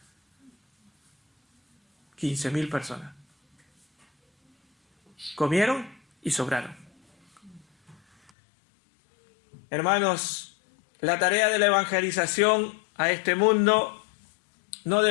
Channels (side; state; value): right; drops out; at 8.3 s